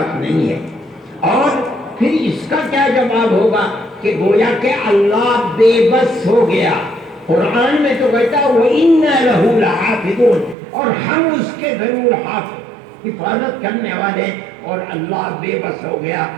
نہیں ہے۔ اور پھر اس کا کیا جواب ہوگا کہ گویا کہ اللہ بے بس ہو گیا۔ قرآن میں تو کہتا ہے وَإِنَّا لَهُ لَحَافِظُونَ، اور ہم اس کے ضرور حفاظت کرنے والے، اور اللہ بے بس ہو گیا۔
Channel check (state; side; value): drops out; left; at 10.6 s